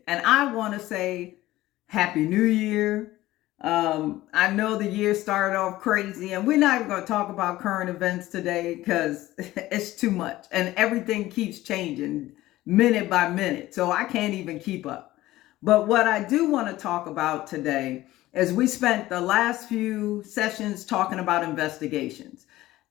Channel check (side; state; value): right; quieter; 16.4 dB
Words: and I want to say Happy New Year. I know the year started off crazy, and we're not even going to talk about current events today because it's too much, and everything keeps changing minute by minute, so I can't even keep up. But what I do want to talk about today is we spent the last few sessions talking about investigations